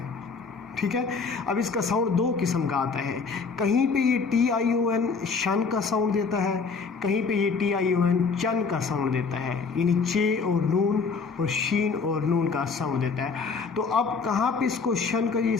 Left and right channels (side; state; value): right; quieter; 4.9 dB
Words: ठीक है। अब इसका साउंड दो किस्म का आता है। कहीं पे ये TION शन का साउंड देता है, कहीं पे ये TION चन का साउंड देता है, यानी चे और नून और शीन और नून का साउंड देता है। तो अब कहाँ पे इसको शन का ये